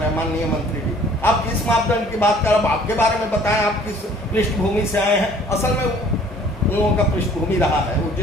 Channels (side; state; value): both; normal; correlation 0.55